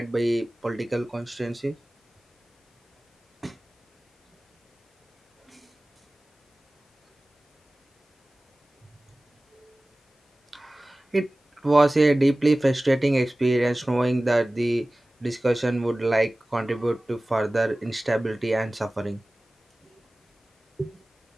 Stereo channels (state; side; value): normal; both; correlation 0.98